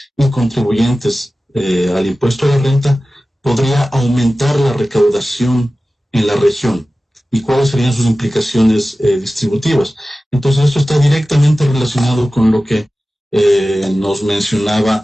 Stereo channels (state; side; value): normal; both; correlation 0.96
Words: y contribuyentes al impuesto a la renta podría aumentar la recaudación en la región y cuáles serían sus implicaciones distributivas. Entonces, esto está directamente relacionado con lo que nos